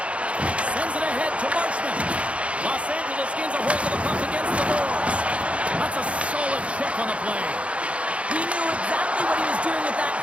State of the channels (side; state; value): left; late; 0.062 ms